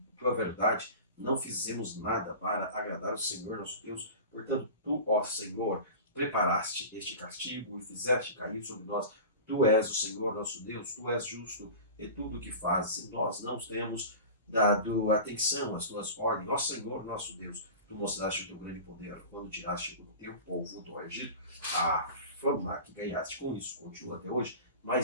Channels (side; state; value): both; inverted; correlation -0.34